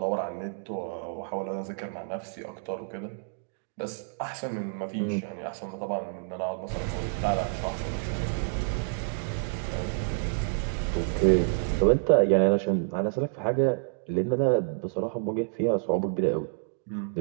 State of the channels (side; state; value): left; silent; digital silence